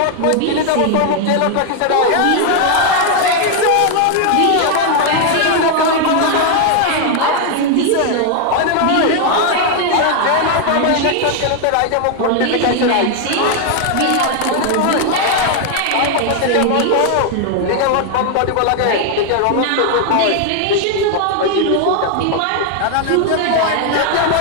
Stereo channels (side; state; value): both; different; correlation 0.00